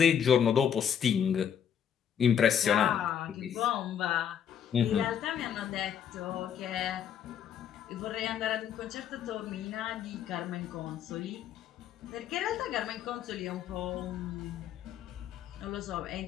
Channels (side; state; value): right; quieter; 8.7 dB